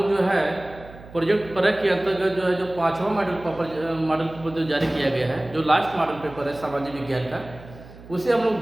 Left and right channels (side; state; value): right; noise; hum, 18 dB below the sound